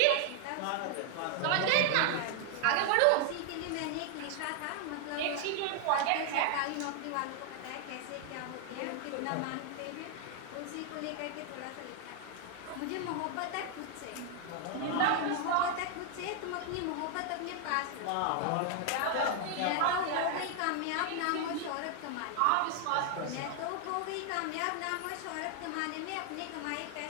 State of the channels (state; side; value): different; both; correlation 0.00